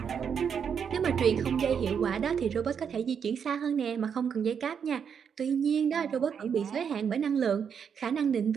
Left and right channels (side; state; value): left; quieter; 7.2 dB